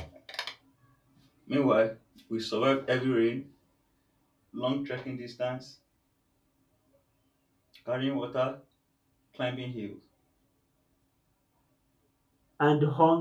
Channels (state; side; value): identical; both; correlation 1.00